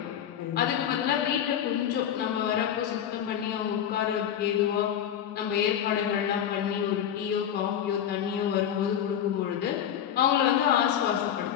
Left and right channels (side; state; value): right; quieter; 9.6 dB